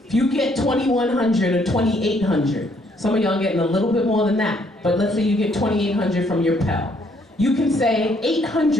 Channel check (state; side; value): normal; both; correlation 0.68